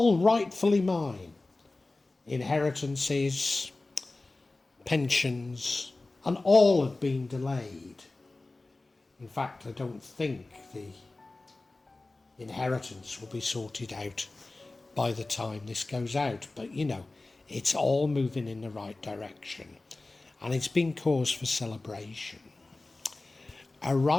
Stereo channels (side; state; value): right; quieter; 3.1 dB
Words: rightfully mine. Inheritances, pensions, and all have been delayed. In fact, I don't think the inheritance will be sorted out by the time this goes out. But it's all moving in the right direction. And it's been cause for celebration.